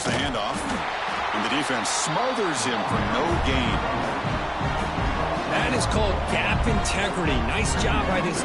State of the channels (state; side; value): identical; both; correlation 1.00